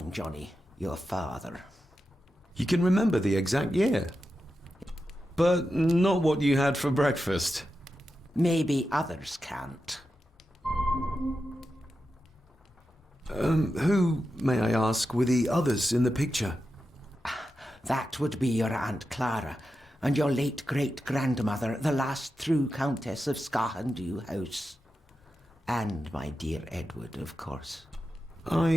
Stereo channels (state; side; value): normal; both; correlation 0.90